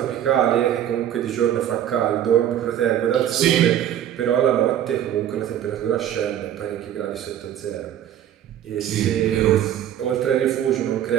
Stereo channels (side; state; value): left; quieter; 10.9 dB